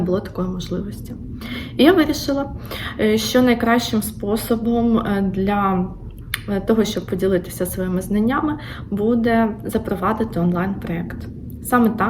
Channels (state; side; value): identical; both; correlation 1.00